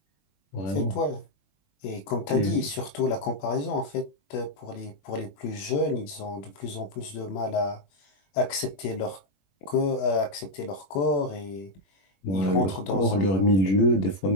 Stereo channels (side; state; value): right; late; 21 ms